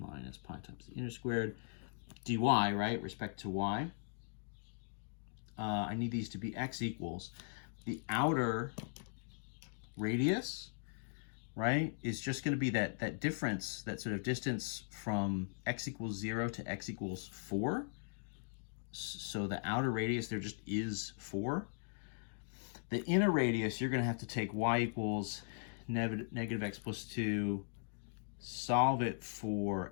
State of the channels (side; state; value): right; silent; digital silence